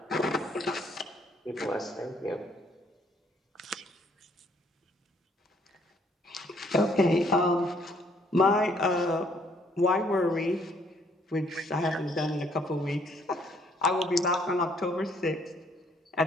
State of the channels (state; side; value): normal; both; correlation 0.65